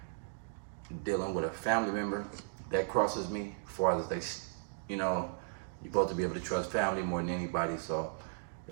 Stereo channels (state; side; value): silent; left; digital silence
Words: dealing with a family member that crosses me, as far as you know, you're supposed to be able to trust family more than anybody. So